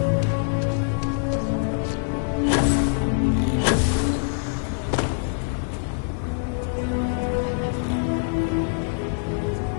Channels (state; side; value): silent; right; digital silence